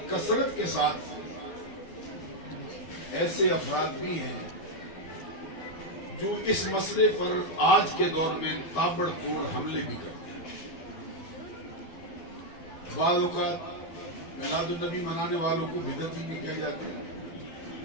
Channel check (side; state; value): right; late; 12 ms